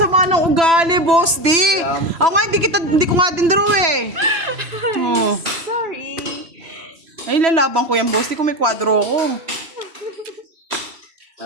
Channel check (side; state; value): left; late; 3.0 ms